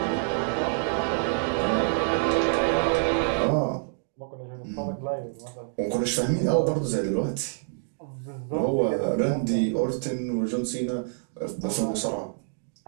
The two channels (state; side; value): silent; left; digital silence